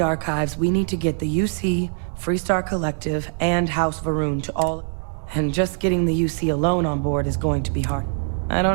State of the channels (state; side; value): silent; left; digital silence